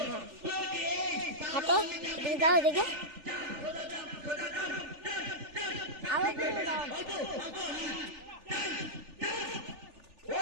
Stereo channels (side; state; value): left; late; 3.4 ms